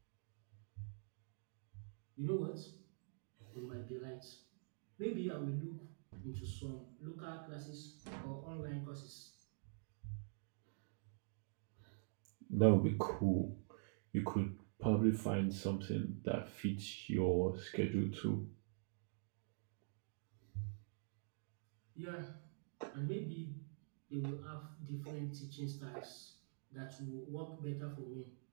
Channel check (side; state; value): left; silent; digital silence